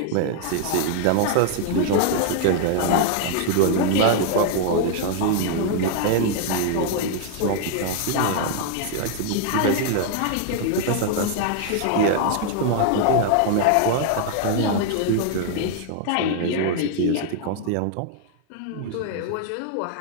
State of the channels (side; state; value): both; different; correlation 0.00